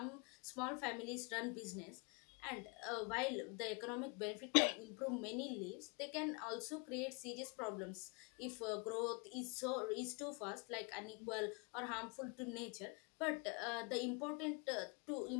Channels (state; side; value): quieter; right; 32.0 dB